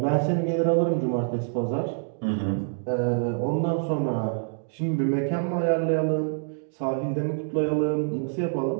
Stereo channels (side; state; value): left; silent; digital silence